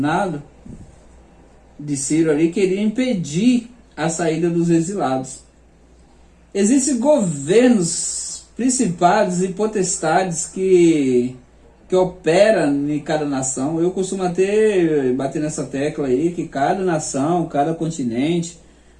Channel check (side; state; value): both; identical; correlation 1.00